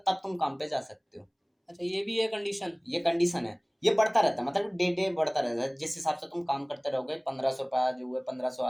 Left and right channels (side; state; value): both; identical; correlation 1.00